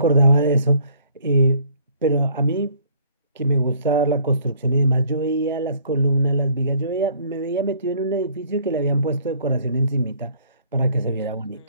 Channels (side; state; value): both; inverted; correlation -0.58